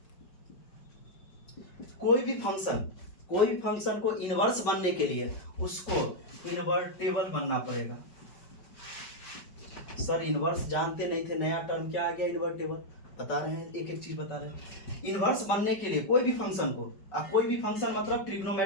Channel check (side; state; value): right; late; 5.2 ms